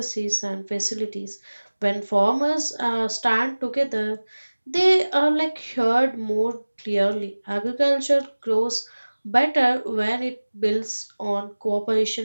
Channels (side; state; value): both; inverted; correlation -1.00